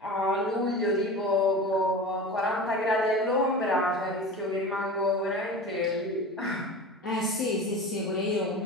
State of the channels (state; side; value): normal; both; correlation 0.32